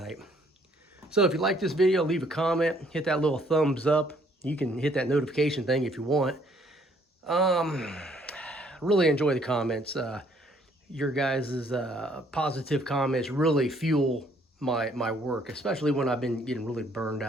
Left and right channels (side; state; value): both; normal; correlation 0.64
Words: So if you like this video, leave a comment, hit that little thumbs up. You can hit that notification thing if you want. Really enjoy the comments. Your guys' positive comments really fuel my work, especially when I've been getting really burned